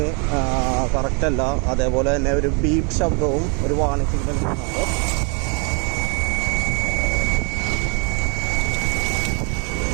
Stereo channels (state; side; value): quieter; left; 35.5 dB